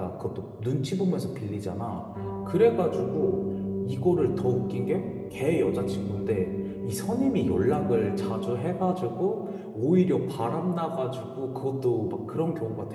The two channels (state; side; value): identical; both; correlation 1.00